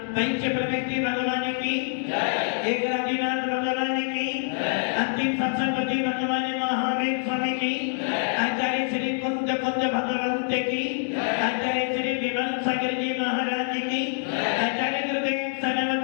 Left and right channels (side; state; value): right; silent; 59 dB below the other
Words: पंच प्रवृत्ति भगवान की एक राजीनाथ भगवान की अंतिम संसदपति भगवान महावीर स्वामी की आचार्य श्री कुंद भगवंत की आचार्य श्री विमल सागर जी महाराज की आचार्य गुरुदेव